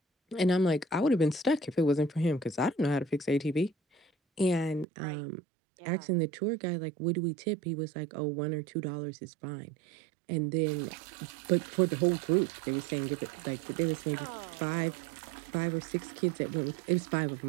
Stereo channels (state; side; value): drops out; left; at 4.9 s